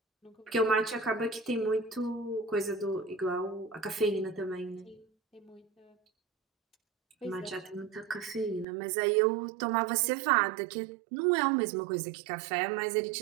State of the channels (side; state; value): left; drops out; at 8.7 s